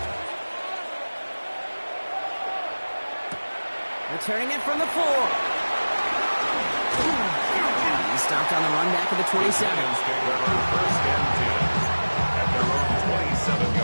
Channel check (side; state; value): both; inverted; correlation -1.00